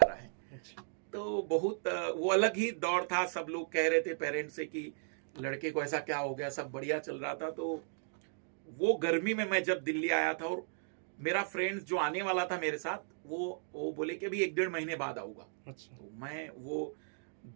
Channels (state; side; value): silent; left; digital silence